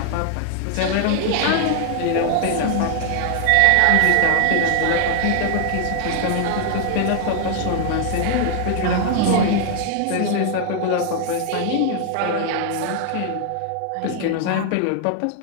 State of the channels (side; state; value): both; different; correlation 0.00